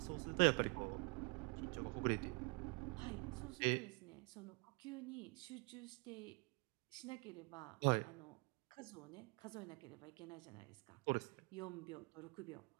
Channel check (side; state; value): left; quieter; 31.0 dB